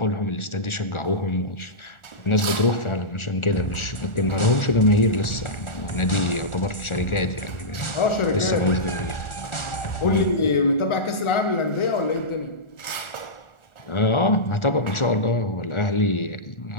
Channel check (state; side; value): late; right; 1.4 ms